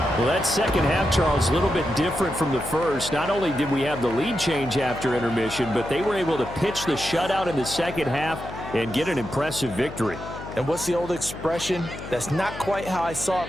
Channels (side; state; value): left; noise; hum, 12 dB below the sound